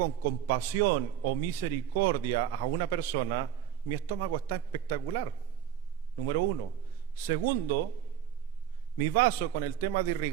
compasión o misericordia a una persona, mi estómago está espectacular, número uno. Segundo, mi vaso con el tema de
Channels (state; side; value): quieter; left; 9.6 dB